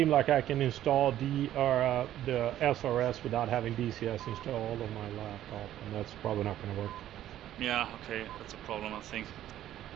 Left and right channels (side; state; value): left; quieter; 12.5 dB